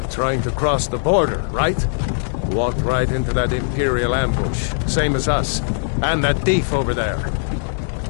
trying to cross the border, right? Walked right into that Imperial ambush, same as us. And that thief over there.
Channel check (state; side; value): silent; right; digital silence